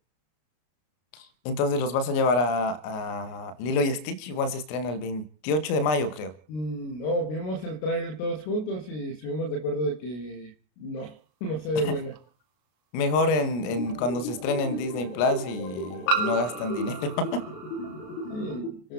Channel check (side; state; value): right; late; 33 ms